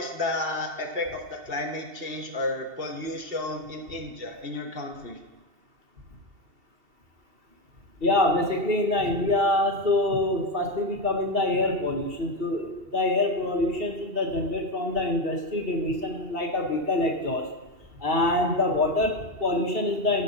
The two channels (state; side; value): late; left; 2.7 ms